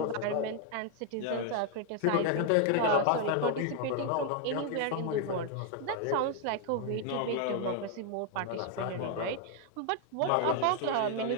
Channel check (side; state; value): both; different; correlation 0.00